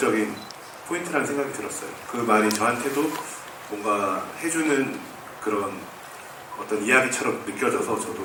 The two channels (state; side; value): identical; both; correlation 1.00